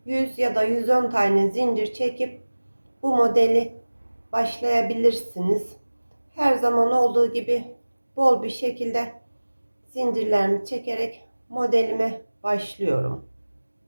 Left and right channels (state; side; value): inverted; both; correlation -1.00